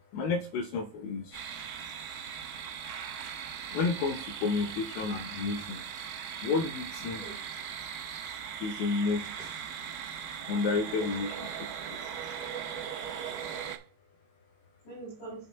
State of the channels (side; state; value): right; late; 19 ms